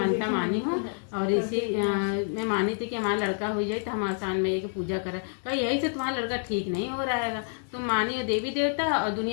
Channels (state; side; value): silent; right; 59 dB below the other